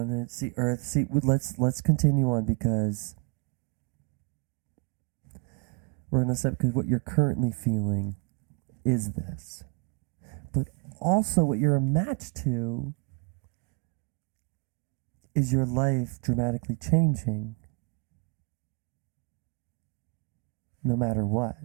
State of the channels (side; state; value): left; quieter; 31.3 dB